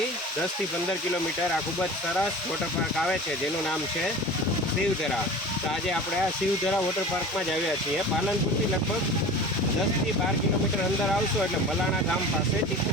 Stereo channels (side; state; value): both; normal; correlation 0.37